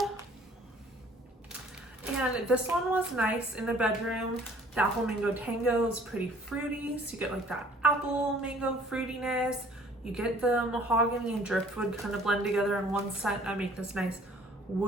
And this one was nice in the bedroom. The Apple Mango Tango is pretty fruity, so you get like that apple mango fruitiness. You get the mahogany and driftwood kind of blend together in one scent and make this nice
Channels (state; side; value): normal; both; correlation 0.55